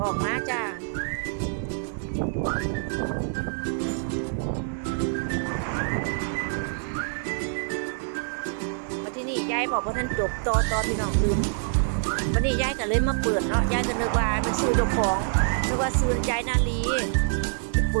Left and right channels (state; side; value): silent; left; 61 dB below the other